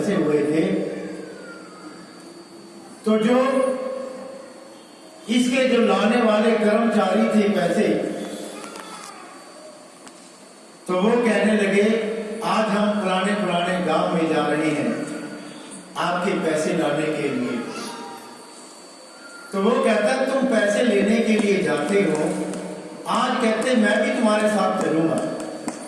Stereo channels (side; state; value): both; identical; correlation 1.00